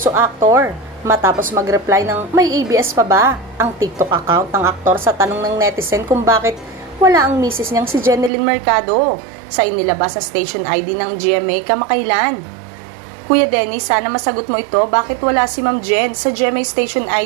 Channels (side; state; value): left; drops out; at 8.3 s